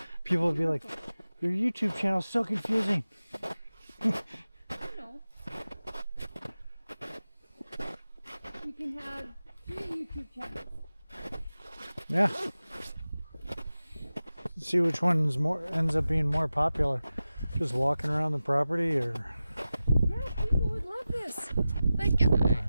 People would be like, your YouTube channel's so confusing. You know. You can have 3 YouTube channels. Yeah. See which one's ends up being more popular. Just walking around the property, or Yeah, people would love this. Like,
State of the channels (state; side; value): inverted; both; correlation -0.94